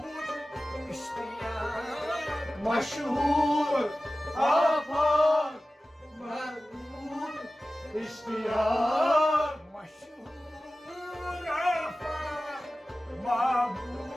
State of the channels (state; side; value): normal; both; correlation 0.96